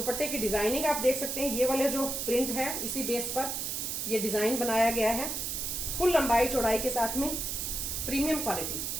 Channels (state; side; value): noise; right; hiss, 2 dB below the sound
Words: की डिजाइनिंग आप देख सकते हैं। ये वाले जो प्रिंट है इसी बेस पर ये डिजाइन बनाया गया है। फुल लंबाई चौड़ाई के साथ में, प्रीमियम क्वालिटी